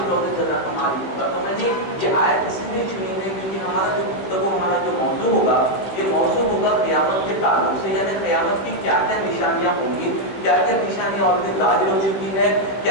روز جزا کا مالک ہوگا. تو میں نے یہ آیت اس لیے چنی ہے کیونکہ ہمارا جو گفتگو ہمارا جو موضوع ہوگا یہ موضوع ہوگا قیامت کے تعلق سے، یعنی قیامت کی کیا کیا نشانیاں ہوں گی، کیا کیا نشانیاں آلریڈی ظاہر ہو چکی ہے،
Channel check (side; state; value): right; late; 16 ms